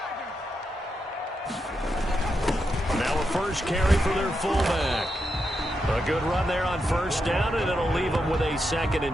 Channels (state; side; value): normal; both; correlation 0.85